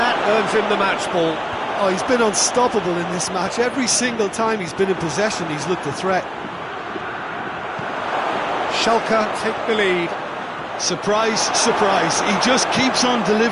earns him the match ball. Oh, he's been unstoppable in this match. Every single time he's been in possession, he's looked a threat. Schalke take the lead. Surprise, surprise. He just keeps on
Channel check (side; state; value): both; identical; correlation 1.00